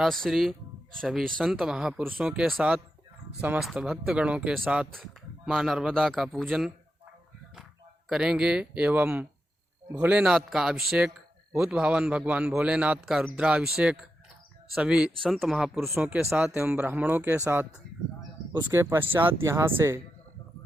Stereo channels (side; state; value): both; normal; correlation 0.87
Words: श्री सभी संत महापुरुषों के साथ समस्त भक्तगणों के साथ माँ नर्मदा का पूजन करेंगे एवं भोलेनाथ का अभिषेक, भूत भावन भगवान भोलेनाथ का रुद्राभिषेक सभी संत महापुरुषों के साथ एवं ब्राह्मणों के साथ। उसके पश्चात यहाँ से